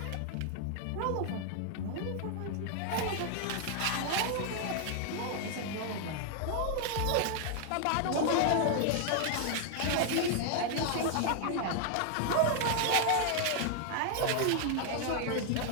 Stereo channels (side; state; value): both; different; correlation 0.00